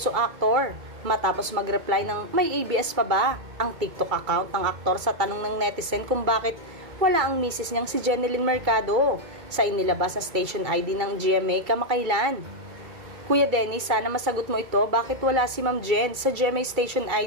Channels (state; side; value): late; left; 2.3 ms